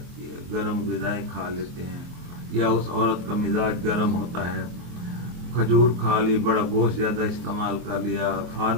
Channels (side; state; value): left; late; 24 ms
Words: ہے، گرم غذائیں کھا لیتے ہیں، یا اس عورت کا مزاج گرم ہوتا ہے، کھجور کھا لی، بڑا گوشت زیادہ استعمال کر لیا،